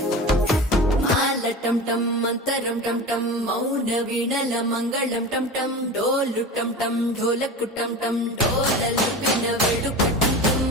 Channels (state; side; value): normal; both; correlation 0.31